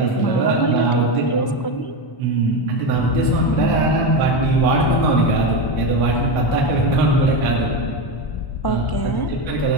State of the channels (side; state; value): right; late; 1.0 ms